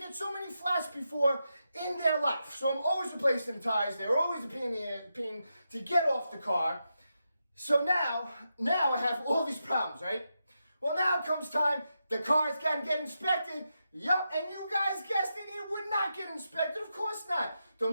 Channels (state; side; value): inverted; both; correlation -0.86